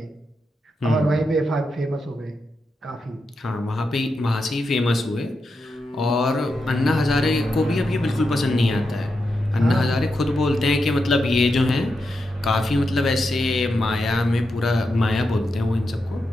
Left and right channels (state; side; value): normal; both; correlation 0.87